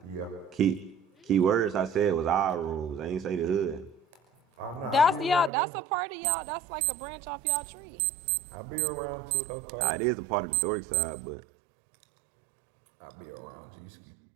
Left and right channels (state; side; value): drops out; left; at 5.5 s